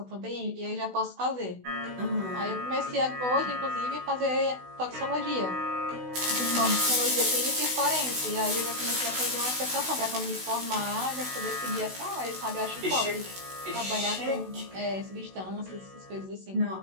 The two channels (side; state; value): left; late; 16 ms